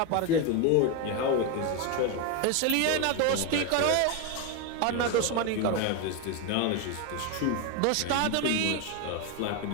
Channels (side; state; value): both; different; correlation 0.02